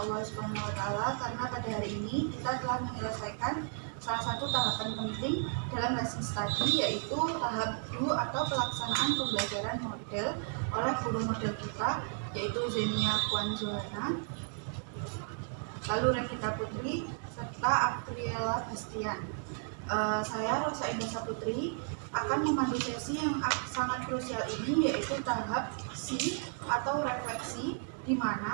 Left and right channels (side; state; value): left; silent; 55 dB below the other